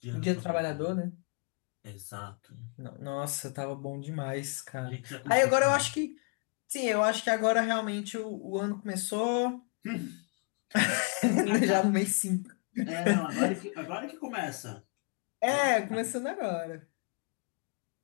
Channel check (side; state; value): right; quieter; 37.1 dB